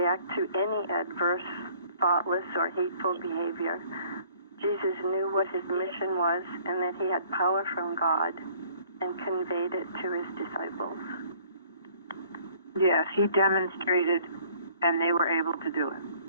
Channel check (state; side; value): inverted; both; correlation -0.56